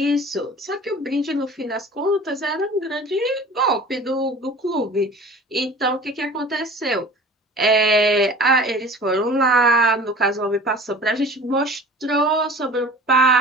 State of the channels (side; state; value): both; normal; correlation 0.43